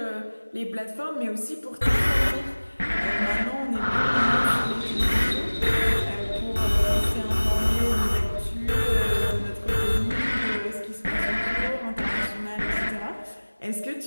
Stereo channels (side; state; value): both; inverted; correlation -1.00